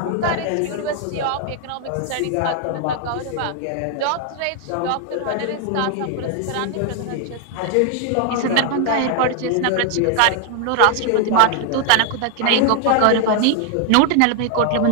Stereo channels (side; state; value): both; different; correlation 0.00